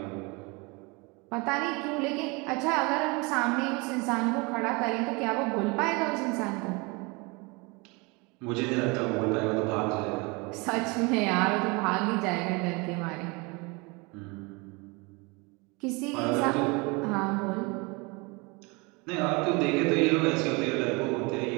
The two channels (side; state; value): left; quieter; 27.8 dB